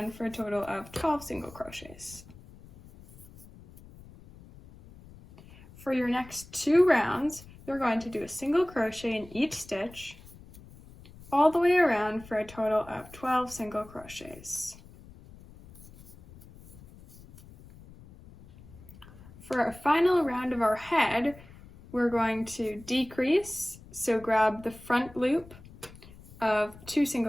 for a total of 12 single crochets. For your next 2 rounds, you're going to do a single crochet in each stitch all the way around for a total of 12 single crochets. For our final round of our head, we're going to decrease, so grab the front loop of 2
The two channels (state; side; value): noise; left; rumble, 20 dB below the sound